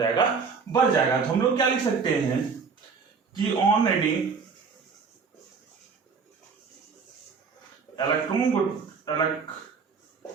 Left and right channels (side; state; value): left; quieter; 5.4 dB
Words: बढ़ जाएगा। तो हम लोग क्या लिख सकते हैं कि on adding electron